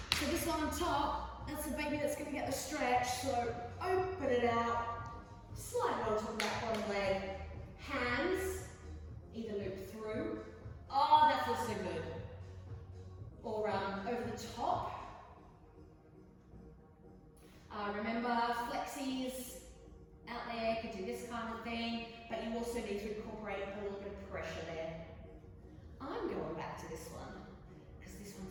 this one on top, that's the baby that's going to get the stretch. So open it out, slide it on top of that bottom leg. Hands, either loop through. Oh, that feels so good. Or over the top. Remember, flexies out there can do this kind of thing, but you also need to incorporate a little bit of pressure there. I'm going back to this one, because this one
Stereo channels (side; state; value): both; identical; correlation 1.00